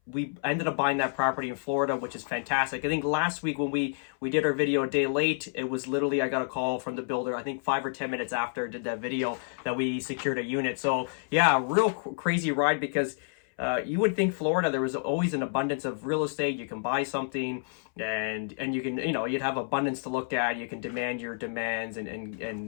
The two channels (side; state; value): right; silent; 58 dB below the other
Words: we ended up buying that property in Florida, which is fantastic. I think last week when we did our video a day late, it was literally, I got a call from the builder, I think 5 or 10 minutes after I did that video, that we secured a unit. So yeah, real crazy ride, because you would think Florida, there was always an abundance of real estate. You can buy something and you can, you'd have abundance to look at. You can demand your demands and